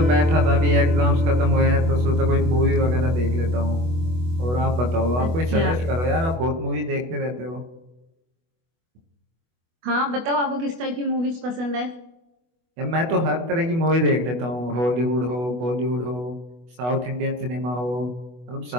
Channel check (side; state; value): left; late; 24 ms